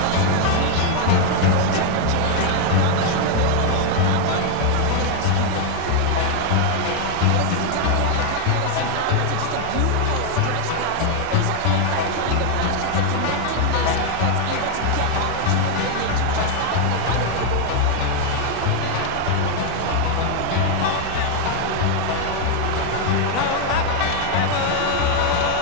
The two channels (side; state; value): both; different; correlation 0.01